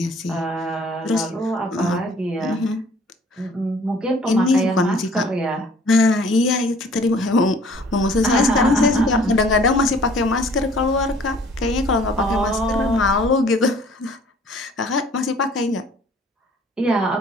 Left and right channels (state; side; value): normal; both; correlation 0.54